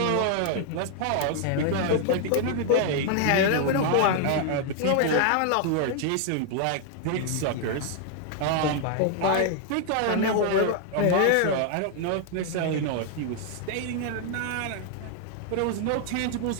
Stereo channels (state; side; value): different; both; correlation 0.00